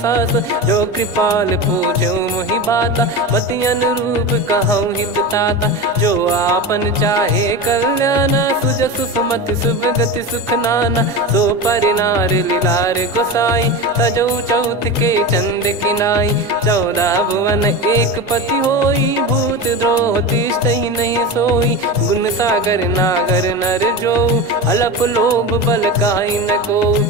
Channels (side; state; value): both; normal; correlation 0.24